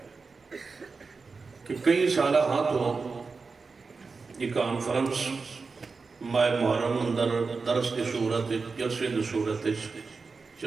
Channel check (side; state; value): left; quieter; 4.5 dB